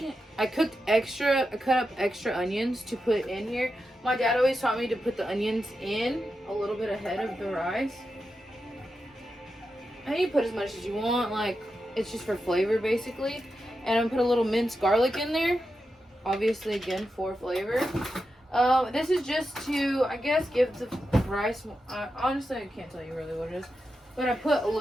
cut up extra onions to put in here. My dad always taught me to put the onions in a little bit ahead of the rice. And you put as much as you want. Like, it's just for flavor, basically. And I'm gonna put a little minced garlic in there. obviously again for flavor. This is just to, I guess, give the rice, honestly I can't tell you really what it is, but I put a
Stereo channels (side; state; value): both; normal; correlation 0.89